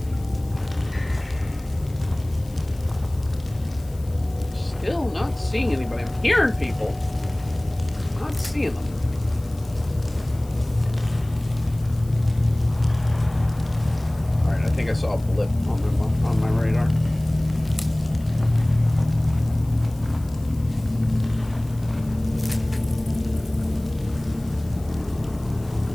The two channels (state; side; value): noise; left; hiss, 24 dB below the sound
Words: Still not seeing anybody. I'm hearing people. Not seeing them. Alright, I think I saw a blip on my radar.